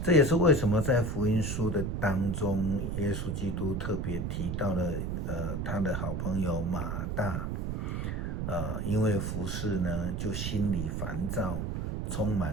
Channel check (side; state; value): right; noise; rumble, 2 dB below the sound